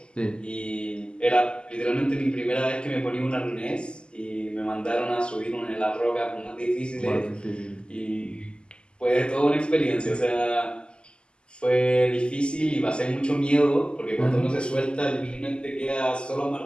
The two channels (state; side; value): late; right; 0.050 ms